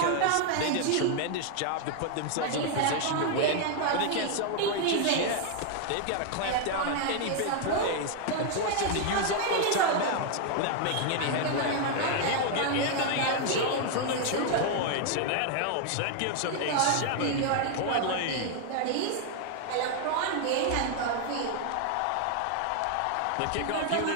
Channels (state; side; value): different; both; correlation 0.00